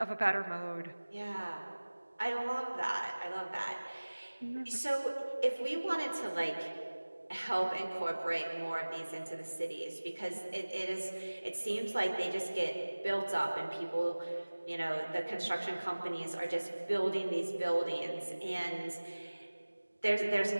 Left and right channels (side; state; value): both; inverted; correlation -1.00